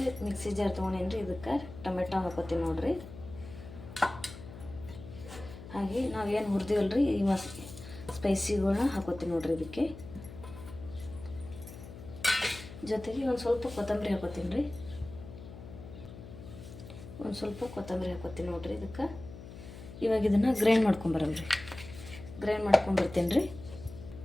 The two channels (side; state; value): left; noise; hum, 14 dB below the sound